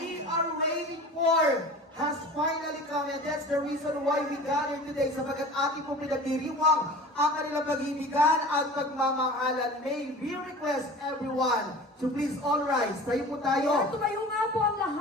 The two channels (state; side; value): normal; both; correlation 0.39